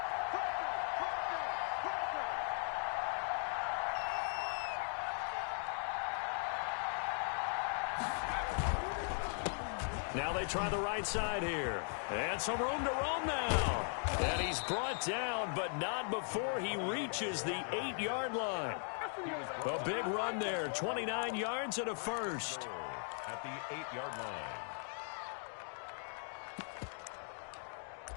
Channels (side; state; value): right; silent; 52 dB below the other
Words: try the right side here. And some room to roam now. And he's brought down, but not before he reaches the 8-yard line. A big run there, 29 yards and a first. At the 8-yard line.